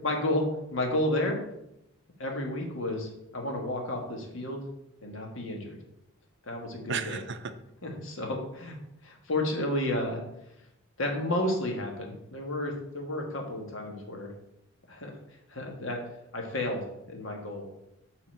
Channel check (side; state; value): both; normal; correlation 0.09